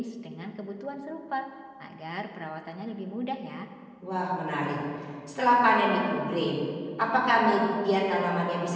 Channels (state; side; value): identical; both; correlation 1.00